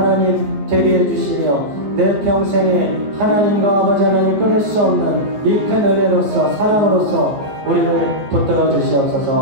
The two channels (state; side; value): late; left; 14 ms